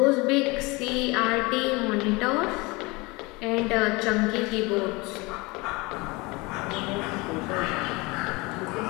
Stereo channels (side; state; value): right; quieter; 24.8 dB